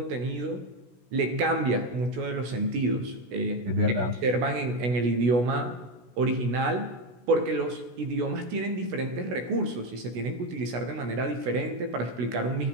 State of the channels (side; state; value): left; late; 16 ms